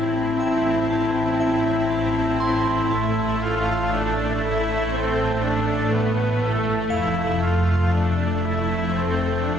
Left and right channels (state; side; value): normal; both; correlation 0.72